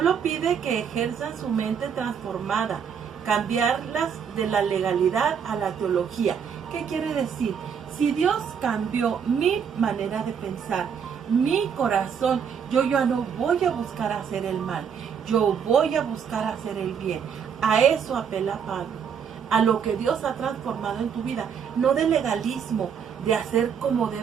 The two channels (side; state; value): left; quieter; 7.3 dB